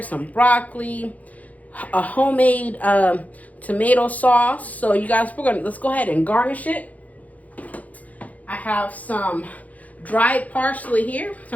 some broccoli, a homemade tomato sauce. So you guys, let's go ahead and garnish it. I have some dried parsley here, so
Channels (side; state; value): right; late; 0.074 ms